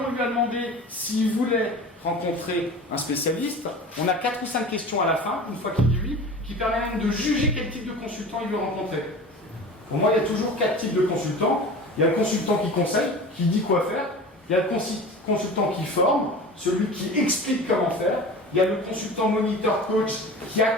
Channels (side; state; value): both; normal; correlation 0.36